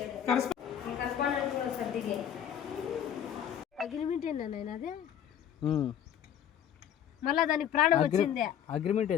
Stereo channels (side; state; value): right; quieter; 9.5 dB